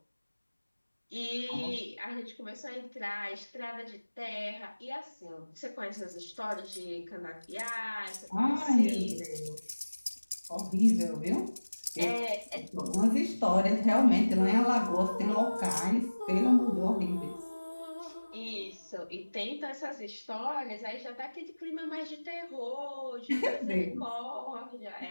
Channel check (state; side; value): inverted; both; correlation -1.00